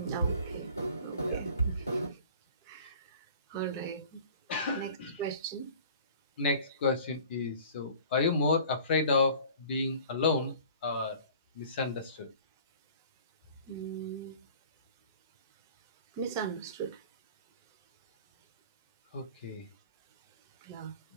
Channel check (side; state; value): both; inverted; correlation -0.47